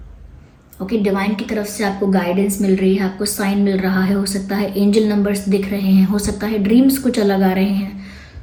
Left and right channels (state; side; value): identical; both; correlation 1.00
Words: ओके, डिवाइन की तरफ से आपको गाइडेंस मिल रही है, आपको साइन मिल रहा है. हो सकता है एंजल नंबर्स दिख रहे हैं, हो सकता है ड्रीम्स कुछ अलग आ रहे हैं.